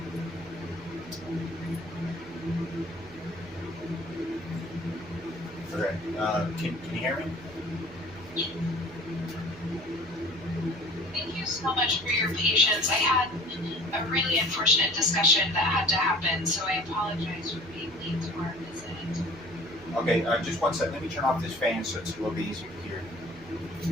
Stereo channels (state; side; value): noise; right; hum, 19 dB below the sound